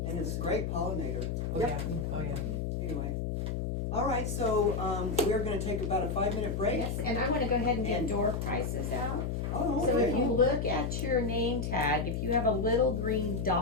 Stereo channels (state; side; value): noise; left; hum, 2 dB below the sound